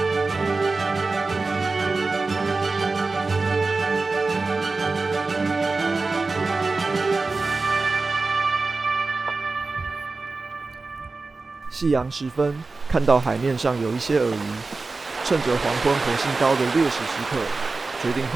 夕阳时分，看到海面上有一些鳄鱼，趁着黄昏火星高的劣势时刻，决定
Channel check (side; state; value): left; quieter; 3.8 dB